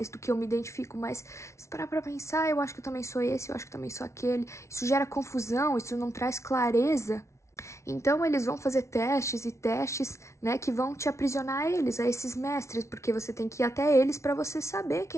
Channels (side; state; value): right; late; 0.13 ms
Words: do que eu me identifico, mas se parar pra pensar, eu acho que eu também sou esse, eu acho que eu também sou aquele. Isso gera confusão, isso não traz clareza. Então eles vão fazer testes e testes, né, que vão te aprisionar a eles, a esses mestres, porque você tem que ir até eles para você saber